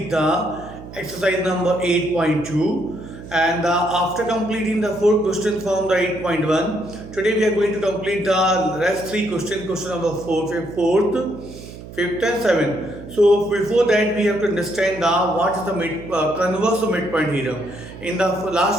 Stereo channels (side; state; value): right; noise; hum, 14 dB below the sound